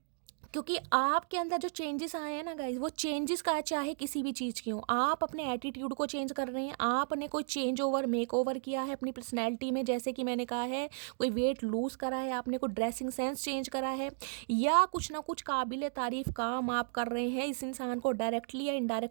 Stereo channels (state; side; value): silent; left; digital silence